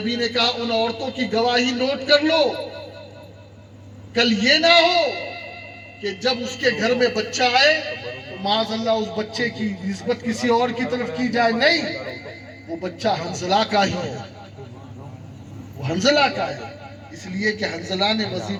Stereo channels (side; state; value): both; identical; correlation 1.00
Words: نے کہا ان عورتوں کی گواہی نوٹ کر لو. کل یہ نہ ہو کہ جب اس کے گھر میں بچہ آئے تو معاذ اللہ اس بچے کی نسبت کسی اور کی طرف کی جائے. نہیں، وہ بچہ حنظلہ کا ہی ہے، وہ حنظلہ کا ہے. اس لیے کہ حنظلہ نے